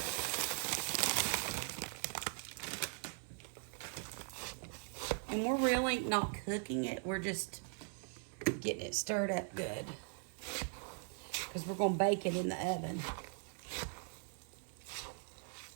And we're really not cooking it. We're just getting it stirred up good because we're going to bake it in the oven.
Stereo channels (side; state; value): left; silent; 51 dB below the other